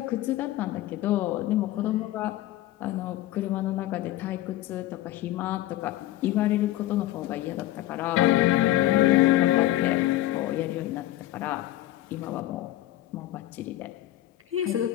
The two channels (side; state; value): right; quieter; 15.1 dB